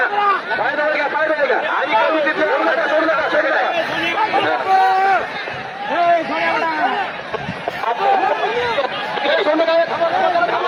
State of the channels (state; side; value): identical; both; correlation 1.00